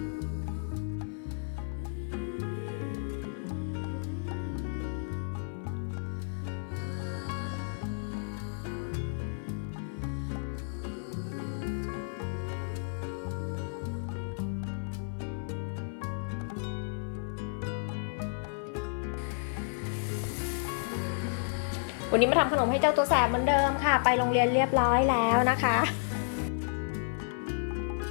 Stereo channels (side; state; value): right; silent; 56 dB below the other